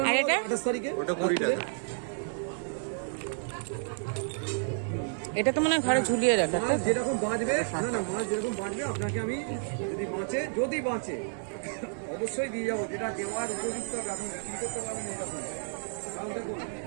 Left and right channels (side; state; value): left; silent; digital silence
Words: আর নেব এটা? 28 তারিখে। ওটা 20 টাকা। এটা তো মনে হয় ঘরে ঝুলিয়ে রাখা। মাছ যেরকম বাঁচবে, না না মাছ যেরকম বাঁচবে আপনাকে আমি যদি বাঁচে অবশ্যই দিয়ে যাবো, যেটা দেওয়ার উপযুক্ত হবে। আপনি বিক্রি করতে পারবেন এটা করে। কারণ দেখুন